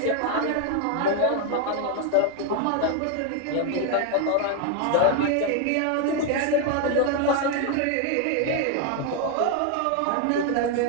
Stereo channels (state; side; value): different; both; correlation 0.01